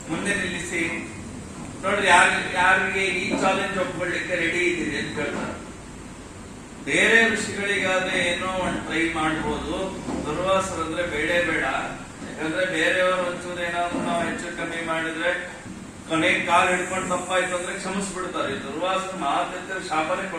ಮುಂದೆ ನಿಲ್ಲಿಸಿ ನೋಡ್ರಿ, ಯಾರಿಗೆ ಈ ಚಾಲೆಂಜ್ ಒಪ್ಕೊಳ್ಳಿಕ್ಕೆ ರೆಡಿ ಇದ್ದೀರಿ ಅಂತ ಕೇಳ್ತಾರೆ. ಬೇರೆ ಋಷಿಗಳಿಗಾದ್ರೆ ಏನೋ ಒಂದು ಟ್ರೈ ಮಾಡ್ಬೋದು, ದುರ್ವಾಸರಂದ್ರೆ ಬೇಡೇ ಬೇಡ. ಯಾಕಂದ್ರೆ ಬೇರೆಯವರು ಒಂಚೂರು ಏನಾದ್ರು ನಾವು ಹೆಚ್ಚು ಕಮ್ಮಿ ಮಾಡಿದ್ರೆ ಕೊನೆಗೆ ಕಾಲು ಹಿಡ್ಕೊಂಡು ತಪ್ಪಾಯ್ತು ಅಂದ್ರೆ ಕ್ಷಮಿಸ್ಬಿಡ್ತಾರೆ. ದುರ್ವಾಸರು ಮಾತ್ರ ಶಾಪನೇ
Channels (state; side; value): identical; both; correlation 1.00